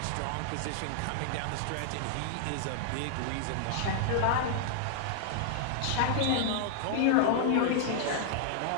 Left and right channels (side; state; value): both; different; correlation -0.01